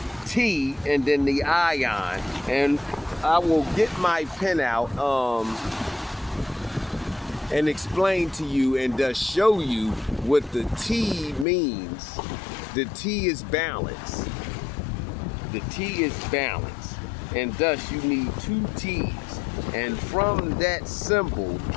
T, and then the ion. And I will get my pen out and explain to you and thus show you what the T means. The T is balance. The T is balance. And thus you need two T's. And from that symbol,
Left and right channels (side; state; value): right; drops out; at 11.5 s